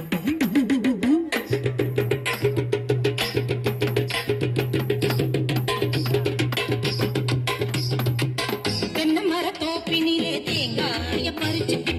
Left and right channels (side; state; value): both; identical; correlation 1.00